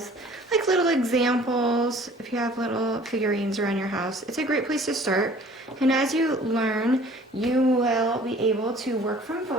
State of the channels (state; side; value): normal; both; correlation 0.51